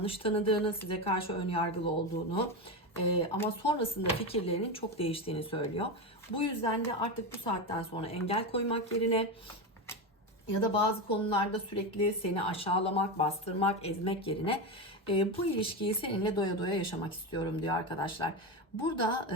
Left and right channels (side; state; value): both; normal; correlation 0.16